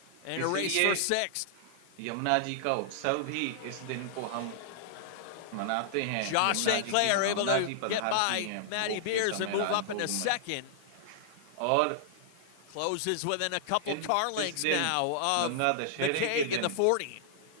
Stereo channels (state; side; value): different; both; correlation -0.01